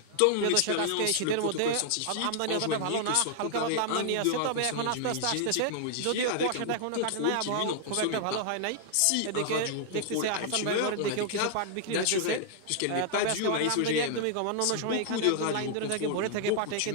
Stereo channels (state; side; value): different; both; correlation 0.00